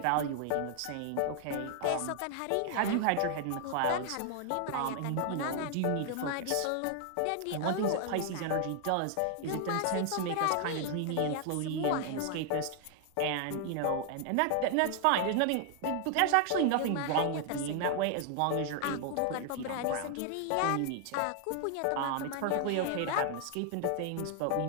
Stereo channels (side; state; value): both; different; correlation 0.00